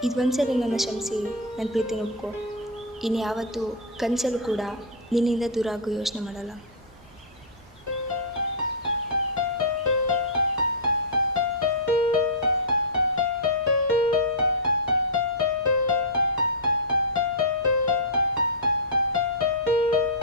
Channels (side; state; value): both; normal; correlation -0.10